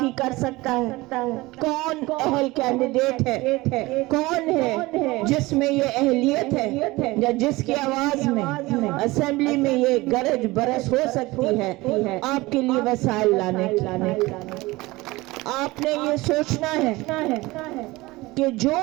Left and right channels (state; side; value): quieter; left; 20.8 dB